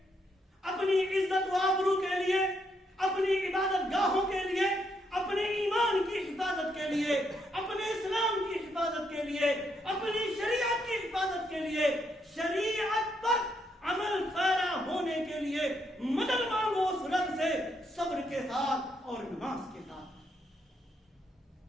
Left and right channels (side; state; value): both; normal; correlation 0.76